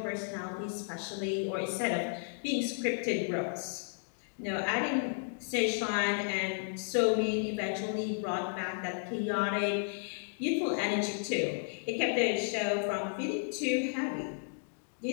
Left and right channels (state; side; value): silent; right; digital silence